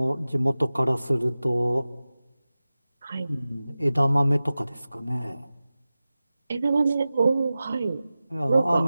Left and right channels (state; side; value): inverted; both; correlation -0.95